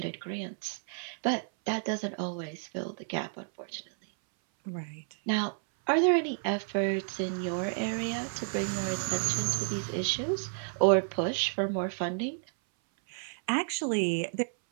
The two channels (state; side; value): silent; left; 57 dB below the other